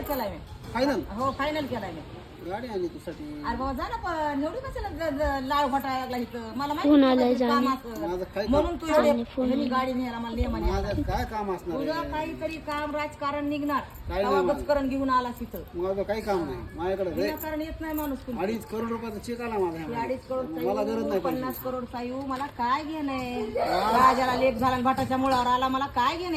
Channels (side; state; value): both; identical; correlation 1.00